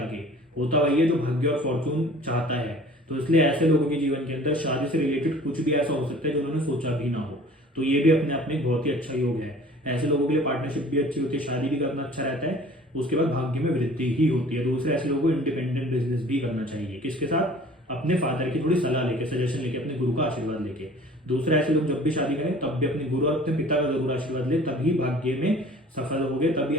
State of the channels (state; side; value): normal; both; correlation 0.48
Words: होता वही है जो भाग्य और फॉर्चून चाहता है। तो इसलिए ऐसे लोगों के जीवन के अंदर शादी से रिलेटेड कुछ भी ऐसा हो सकता है जो उन्होंने सोचा भी ना हो, तो ये भी अपने आप में बहुत ही अच्छा योग है। ऐसे लोगों के लिए पार्टनरशिप भी अच्छी होती है, शादी भी करना अच्छा रहता है, उसके बाद भाग्य में वृद्धि ही होती है। दूसरे ऐसे लोगों को इंडिपेंडेंट बिजनेस भी करना चाहिए, किसके साथ, अपने फादर की थोड़ी सलाह लेके, सजेशन लेके, अपने गुरु का आशीर्वाद लेके। दूसरा, ऐसे लोग जब भी शादी करें तब भी अपने गुरु और अपने पिता का जरूर आशीर्वाद ले, तभी भाग्य में सफल होगे, तभी